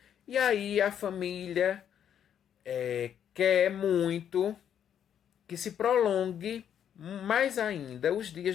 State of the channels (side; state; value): right; quieter; 9.2 dB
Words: e aí a família quer muito que se prolongue mais ainda os